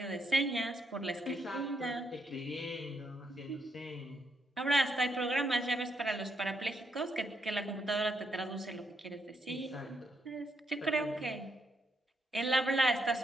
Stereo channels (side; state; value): both; normal; correlation 0.78